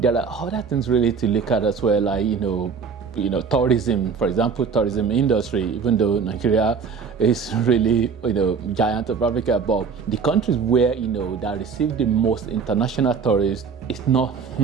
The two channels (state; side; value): quieter; left; 5.8 dB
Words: are other things really to look at as well, like tourism, for example, tourism industry. Even though Nigeria is really giant of Africa, but the countries where that receive the most international tourists is not